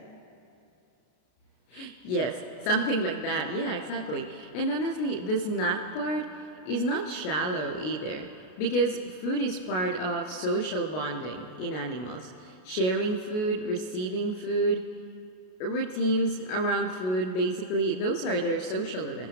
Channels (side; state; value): right; late; 33 ms